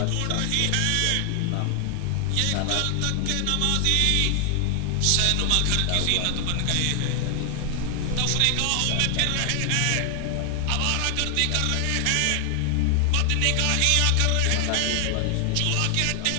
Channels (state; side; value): different; both; correlation 0.00